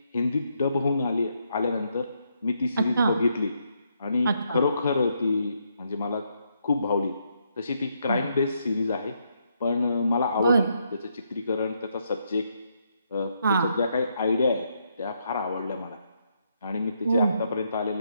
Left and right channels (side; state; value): both; inverted; correlation -0.77